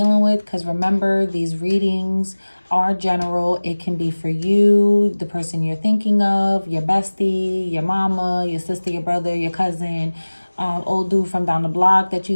with, because remember, these readings are general. It can be for you, the person you're thinking of, your bestie, your mama, your sister, your brother, your cousin, old dude from down the block that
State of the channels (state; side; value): inverted; both; correlation -1.00